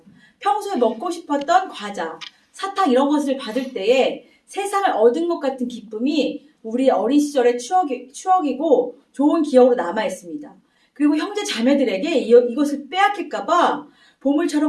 평소에 먹고 싶었던 과자, 사탕 이런 것을 받을 때에 세상을 얻은 것 같은 기쁨이 우리 어린 시절의 추억이고 좋은 기억으로 남아 있습니다. 그리고 형제 자매들에게 이것을 빼앗길까봐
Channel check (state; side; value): identical; both; correlation 1.00